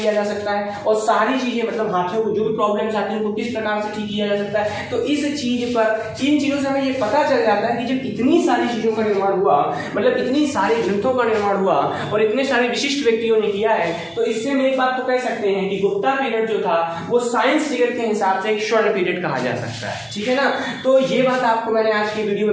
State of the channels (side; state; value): both; identical; correlation 1.00